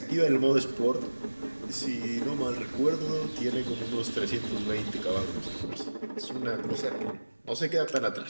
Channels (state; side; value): inverted; both; correlation -1.00